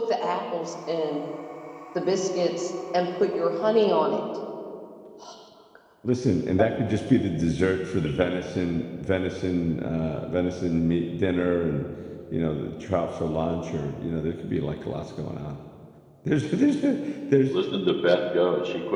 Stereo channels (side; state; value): both; identical; correlation 1.00